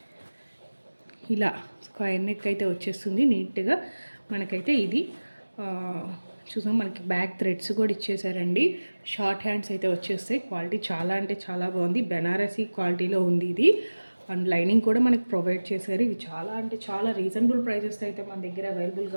ఇలా స్క్వేర్ నెక్ అయితే వచ్చేస్తుంది నీట్గా. మనకైతే ఇది చూసాం, మనకి బ్యాక్ థ్రెడ్స్ కూడా ఇచ్చేసారండి. షార్ట్ హ్యాండ్స్ అయితే వచ్చేస్తాయి. క్వాలిటీ చాలా బాగుంది. బెనారసీ క్వాలిటీలో ఉంది ఇది. అండ్ లైనింగ్ కూడా మనకి ప్రొవైడ్ చేశారు. ఇవి చాలా రీజనబుల్ ప్రైజెస్ అయితే మన దగ్గర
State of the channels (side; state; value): both; inverted; correlation -1.00